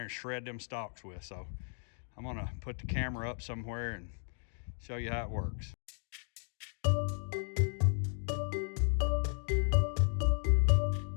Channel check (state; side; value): silent; right; 55 dB below the other